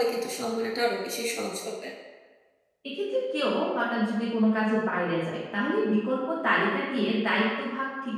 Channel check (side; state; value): both; identical; correlation 1.00